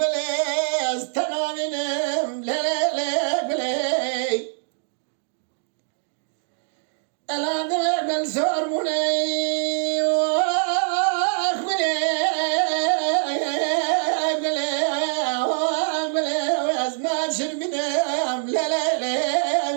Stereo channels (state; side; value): silent; left; digital silence